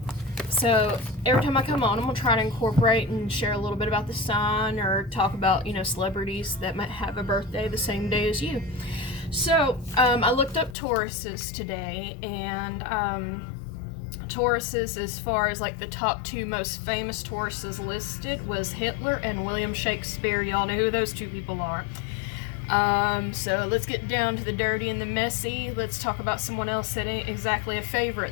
So every time I come on, I'm going to try to incorporate and share a little bit about the sign or talk about, celebrities that might have a birthday the same day as you. So I looked up Tauruses today, and Tauruses, as far as like the top two most famous Tauruses listed, was Hitler and William Shakespeare. Y'all know who those two people are. So let's get down to the dirty and the messy. Let's talk about someone else that ain't exactly a favorite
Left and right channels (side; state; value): right; drops out; at 10.8 s